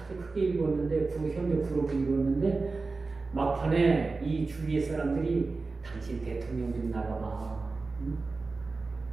크게 이루었는데 현대 그룹을 이루었는데 막판에 이 주위의 사람들이 당신 대통령 좀 나가봐. 응?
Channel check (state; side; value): quieter; left; 3.8 dB